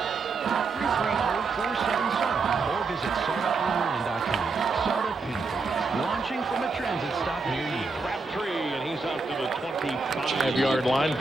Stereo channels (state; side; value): quieter; left; 4.1 dB